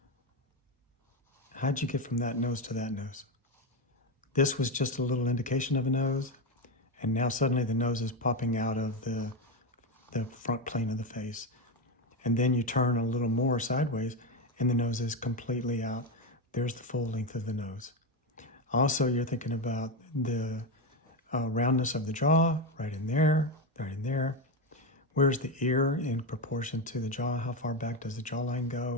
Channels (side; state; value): both; normal; correlation 0.12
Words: How'd you get from that nose to that nose? This was just a little indication of a nose, and now suddenly the nose is popping out of the front plane of the face. And then you turn a little more sideways and the nose is completely out. There's the full length of the nose. Also, you're thinking about the roundness of the jaw, right in there, right in there. Where's the ear in proportion to the jaw? How far back does the jawline